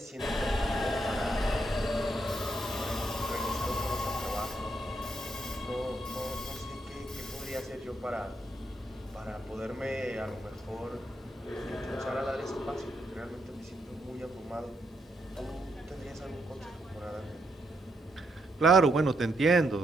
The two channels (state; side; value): normal; both; correlation 0.78